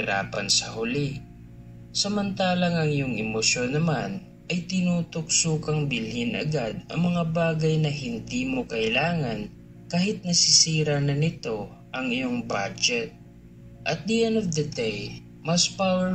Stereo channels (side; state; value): both; identical; correlation 1.00